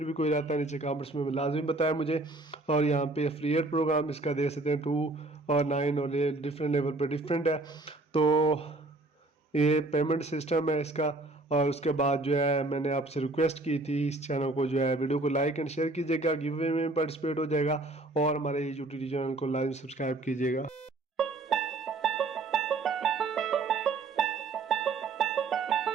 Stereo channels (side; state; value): left; quieter; 3.1 dB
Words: भी कोई रहता है नीचे कमेंट्स में लाजमी बताया मुझे। और यहाँ पे एफिलिएट प्रोग्राम इसका दे सकते हैं 2 और 9 और ये डिफरेंट लेवल पे डिफरेंट है। तो ये पेमेंट सिस्टम है इसका। और उसके बाद जो है मैंने आपसे रिक्वेस्ट की थी इस चैनल को जो है वीडियो को लाइक एंड शेयर कीजिएगा, गिव अवे में पार्टिसिपेट हो जाएगा, और हमारे यूट्यूब चैनल को लाइक सब्सक्राइब कीजिएगा।